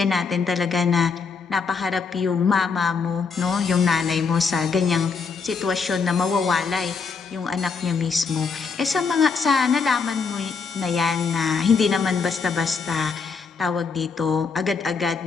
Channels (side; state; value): right; quieter; 5.1 dB